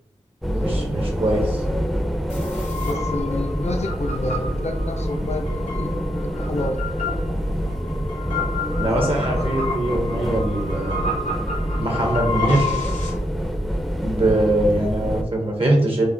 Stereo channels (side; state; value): both; normal; correlation 0.80